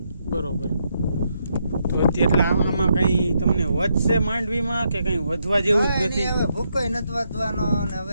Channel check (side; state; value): both; inverted; correlation -0.79